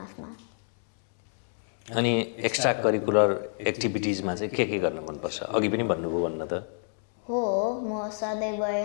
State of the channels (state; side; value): silent; right; 60 dB below the other